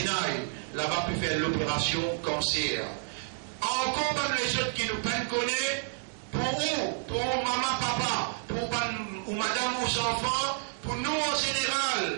Là-bas, peut faire l'opération cancer. Encore même les autres qui nous peuvent connaître, pour où, pour maman, papa, pour ou madame, ou enfants, pour nous en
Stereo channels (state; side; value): silent; left; digital silence